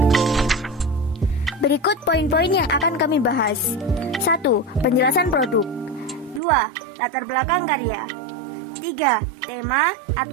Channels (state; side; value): drops out; left; at 6.4 s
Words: Berikut poin-poin yang akan kami bahas. 1. Penjelasan produk. 2. Latar belakang karya. 3. Tema